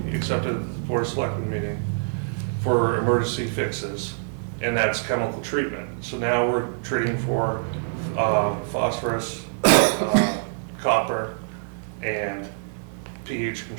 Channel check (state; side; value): silent; left; digital silence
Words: accepted at the Board of Selectmen meeting for emergency fixes, and that's chemical treatment. So now we're treating for phosphorus, copper, and pH